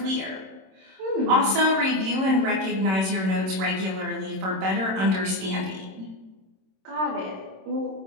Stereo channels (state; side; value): late; left; 26 ms